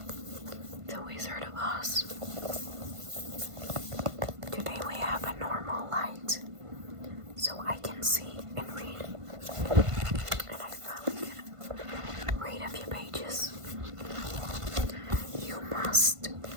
The Wizard of Oz. Today we have a normal light, so I can see and read. And I finally can read a few pages. You must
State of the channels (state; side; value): late; left; 1.5 ms